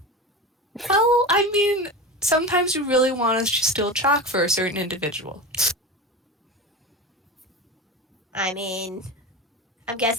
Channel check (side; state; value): both; normal; correlation 0.26